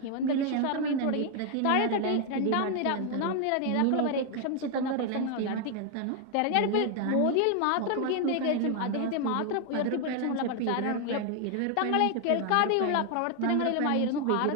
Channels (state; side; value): different; both; correlation 0.00